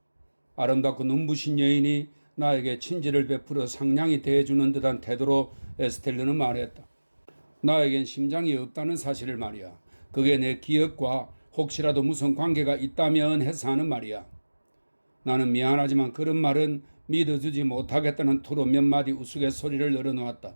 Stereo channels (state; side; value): inverted; both; correlation -1.00